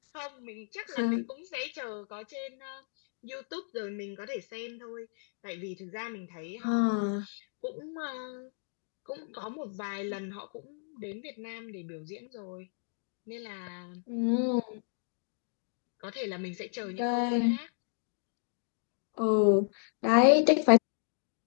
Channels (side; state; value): right; silent; digital silence